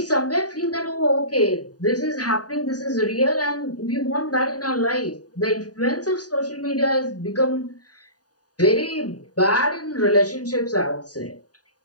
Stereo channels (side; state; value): right; late; 0.68 ms